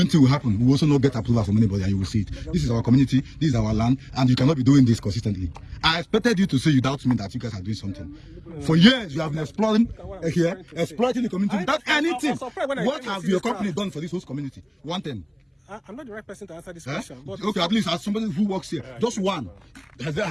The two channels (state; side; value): identical; both; correlation 1.00